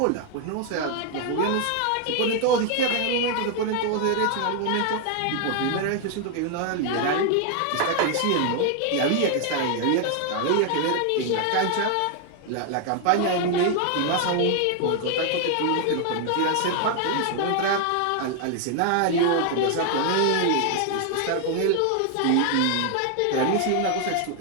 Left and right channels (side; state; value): both; different; correlation 0.00